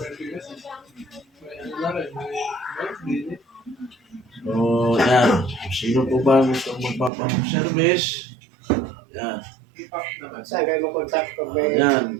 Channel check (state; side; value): drops out; left; at 7.1 s